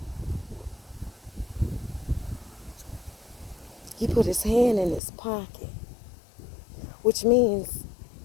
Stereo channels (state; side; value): drops out; right; at 5.0 s